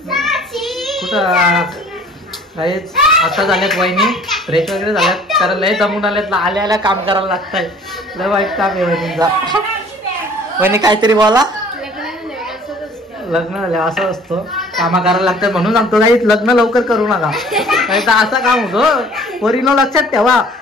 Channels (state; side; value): normal; both; correlation 0.52